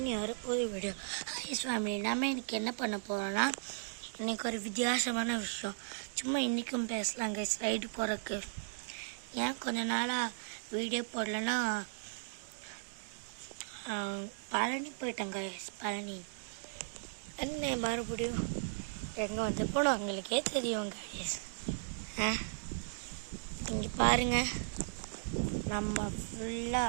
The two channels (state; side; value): silent; left; digital silence